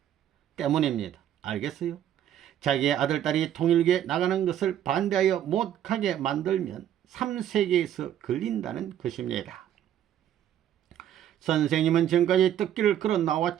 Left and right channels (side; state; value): left; quieter; 10.9 dB